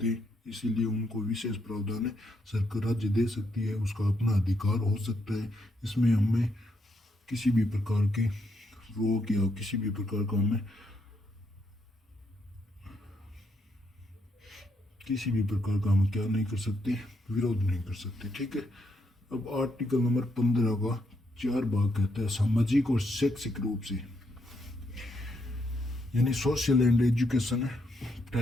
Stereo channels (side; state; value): both; normal; correlation 0.77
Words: हैं, इसीलिए उनको विशेष प्रावधान है। सरकार राज्य दे सकती है, उसका अपना अधिकार हो सकता है। इसमें हमें किसी भी प्रकार के रोक या किसी भी प्रकार का हमें किसी भी प्रकार का हम क्या नहीं कर सकते, विरोध नहीं कर सकते। ठीक है। अब आर्टिकल नंबर 15 का 4 भाग कहता है सामाजिक और शैक्षिक रूप से, यानी सोशल एंड एजुकेशन